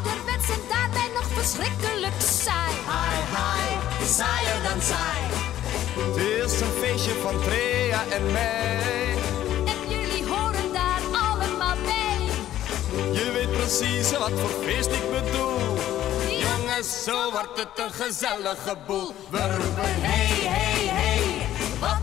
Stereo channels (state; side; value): quieter; right; 12.6 dB